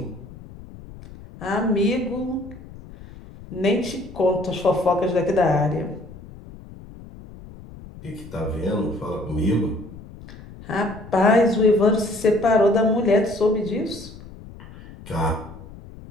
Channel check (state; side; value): noise; left; rumble, 17 dB below the sound